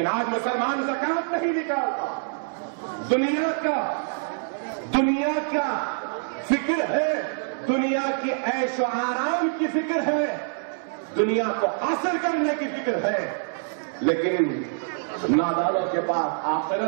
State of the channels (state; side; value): silent; left; 61 dB below the other